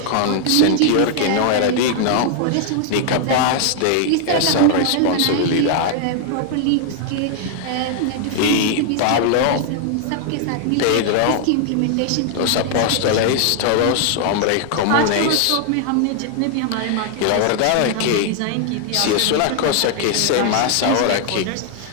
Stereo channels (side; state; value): both; different; correlation 0.00